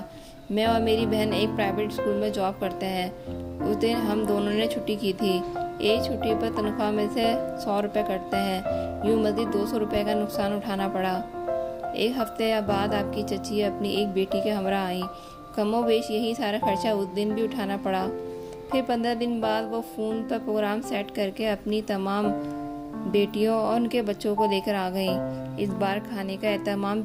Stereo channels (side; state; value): both; identical; correlation 1.00